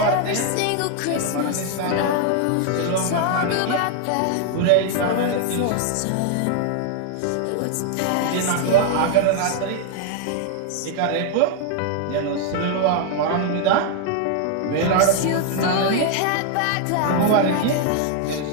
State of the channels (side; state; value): both; different; correlation 0.00